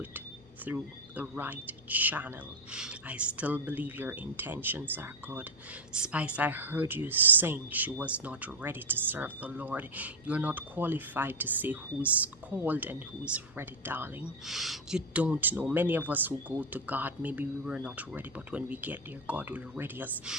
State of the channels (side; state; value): both; normal; correlation 0.06